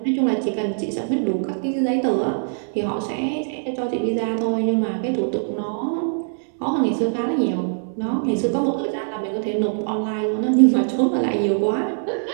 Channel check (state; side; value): silent; left; digital silence